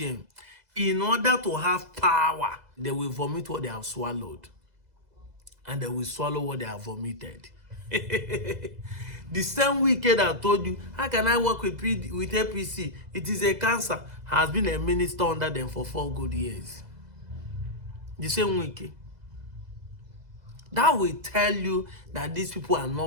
in order to have power, they will vomit what they have swallowed. And they will swallow what they have vomited. The same wicked I told you, how can I work with APC? It is a cancer. Has been a minister under them for 4 good years. The same wicked. That will tell you that these people are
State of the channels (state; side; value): late; left; 2.0 ms